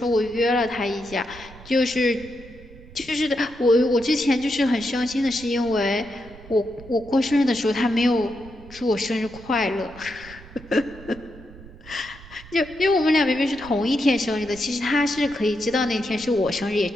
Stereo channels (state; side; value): noise; right; rumble, 19 dB below the sound